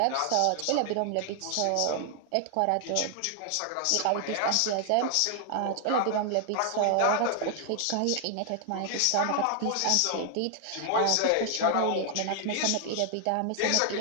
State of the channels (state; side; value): different; both; correlation 0.00